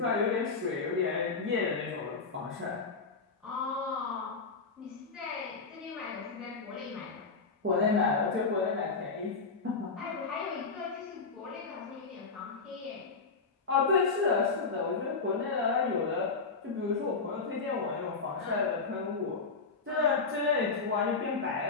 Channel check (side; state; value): right; quieter; 4.5 dB